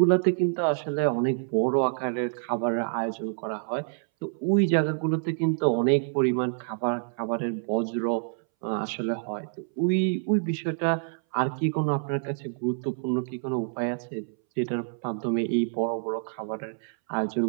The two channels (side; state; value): left; silent; 60 dB below the other